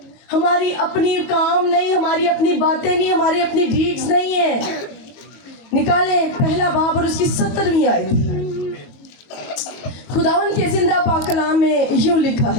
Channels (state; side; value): late; right; 22 ms